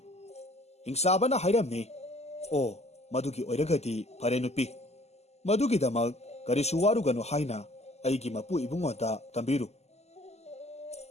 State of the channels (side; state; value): right; late; 0.31 ms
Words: hingsabana hairamni o madugi oiragadi phare nupi madugidamag karisu waruganu haina aigi mapu ibungoda tambiru